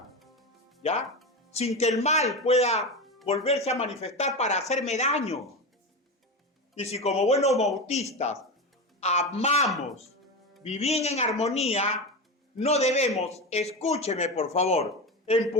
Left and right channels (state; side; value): normal; both; correlation 0.21